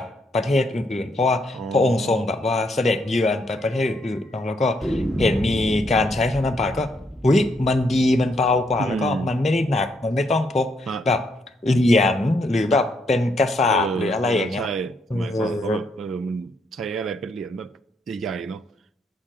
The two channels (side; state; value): both; normal; correlation 0.75